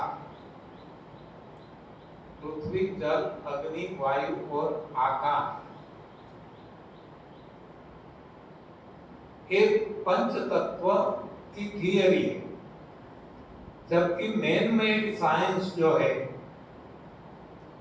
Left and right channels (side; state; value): both; identical; correlation 1.00